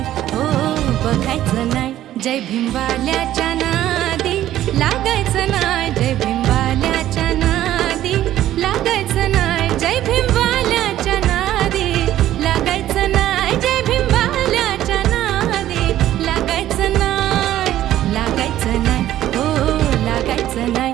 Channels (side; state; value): left; quieter; 13.0 dB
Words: हो बघायचं नाही. जय भीमवाल्याच्या नादी लागायचं नाही, जय भीमवाल्याच्या नादी लागायचं नाही, जय भीमवाल्याच्या नादी लागायचं नाही, जय भीमवाल्याच्या नादी लागायचं नाही, लागायचं नाही, हो लागायचं